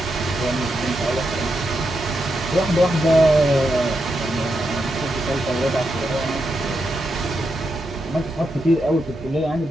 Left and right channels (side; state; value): both; normal; correlation 0.84